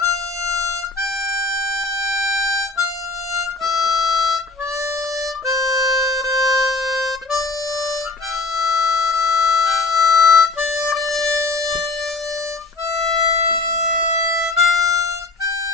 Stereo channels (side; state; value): right; quieter; 3.5 dB